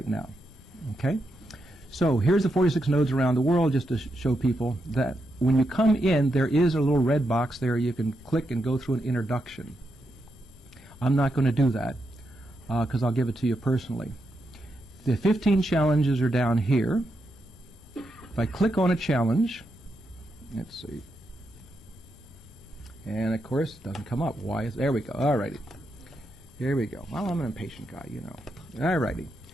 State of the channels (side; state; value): left; noise; rumble, 22 dB below the sound